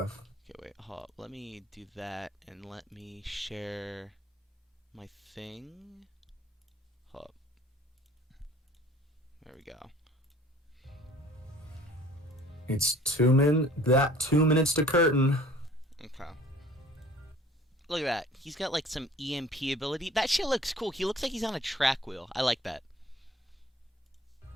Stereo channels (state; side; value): normal; both; correlation 0.50